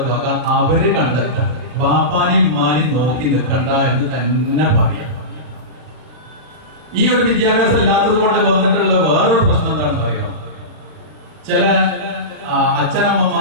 വക അവര് കണ്ടെത്താൻ, ബാപ്പാനെയും ഉമ്മാനെയും നോക്കി നിൽക്കണ്ട എന്ന് തന്നെ പറയാം. ഈ ഒരു വിദ്യാഭ്യാസം ഇല്ലാത്തത് കൊണ്ട് വന്നിട്ടുള്ള വേറൊരു പ്രശ്നം എന്താണെന്ന് അറിയാം. ചില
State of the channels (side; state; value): left; late; 39 ms